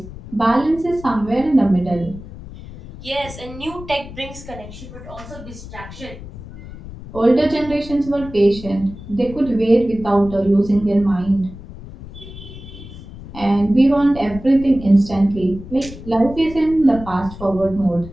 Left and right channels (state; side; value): noise; left; rumble, 14 dB below the sound